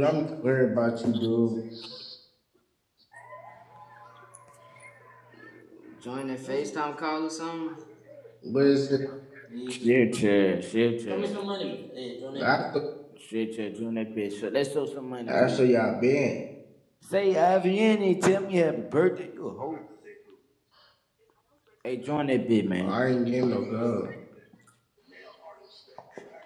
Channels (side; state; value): both; identical; correlation 1.00